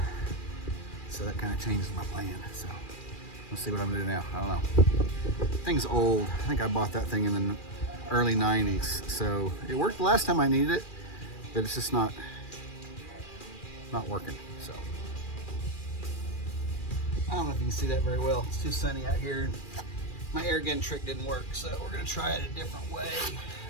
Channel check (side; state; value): right; late; 2.4 ms